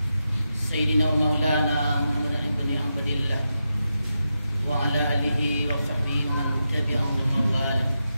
Sayyidina wa maulana Muhammadin ibn Abdillah wa ala alihi wa sahbihi man tabi'ahum wa mawala.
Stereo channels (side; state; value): both; inverted; correlation -0.88